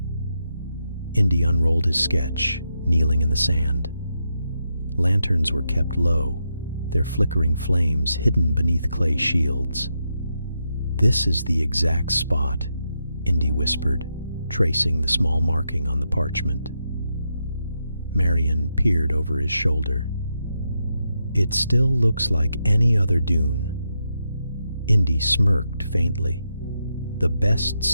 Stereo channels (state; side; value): inverted; both; correlation -0.84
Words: Indy unrolled his sketch, kneeling in the sand. Lanterns were kept low, their flickering flames hidden beneath clay shields. "This is the exact spot," Indy whispered, tracing the small marking on the parchment. Marion peered over his shoulder. "It still looks like any other dune." Indy smirked faintly. "The best